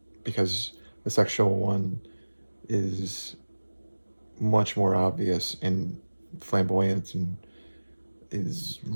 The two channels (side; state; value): both; inverted; correlation -1.00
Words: because the sexual one is much more obvious and flamboyant and is